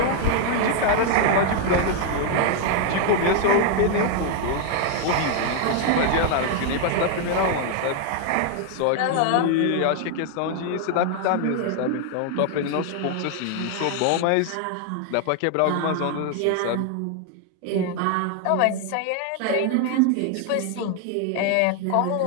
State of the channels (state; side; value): different; both; correlation 0.00